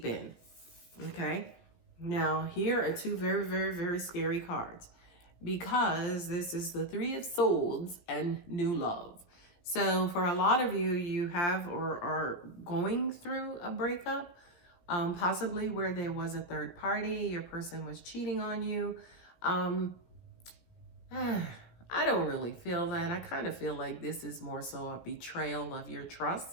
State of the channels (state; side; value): late; right; 17 ms